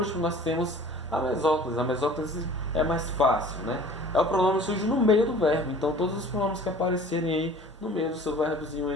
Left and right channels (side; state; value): both; normal; correlation 0.46